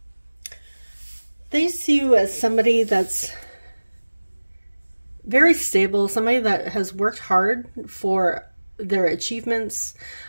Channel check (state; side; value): inverted; both; correlation -1.00